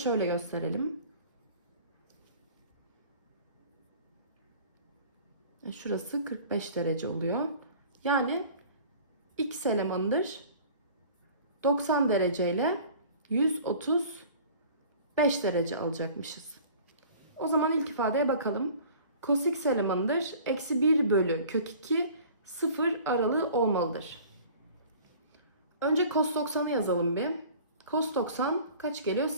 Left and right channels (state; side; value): inverted; both; correlation -0.46